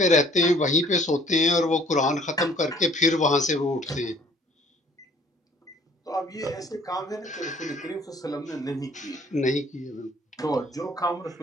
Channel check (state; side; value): normal; both; correlation 0.57